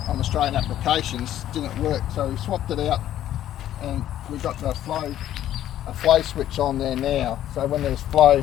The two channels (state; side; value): quieter; right; 12.0 dB